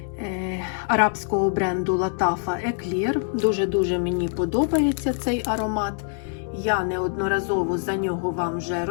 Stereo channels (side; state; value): right; silent; 62 dB below the other